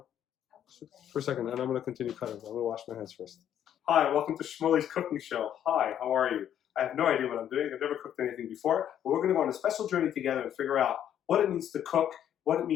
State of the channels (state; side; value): quieter; right; 10.1 dB